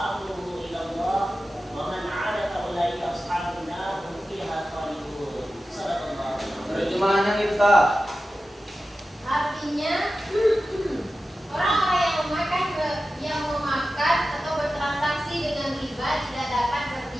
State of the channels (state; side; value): normal; both; correlation 0.94